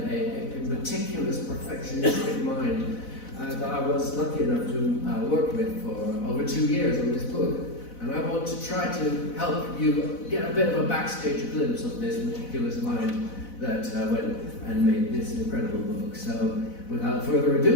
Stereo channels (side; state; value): right; late; 4.0 ms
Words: a meticulous, perfectionistic mind that I was lucky enough to work with for over 2 years on this book. And I want to try to help you get a bit of a backstage glimpse of this meticulous mind that went and made this incredible book. So, without further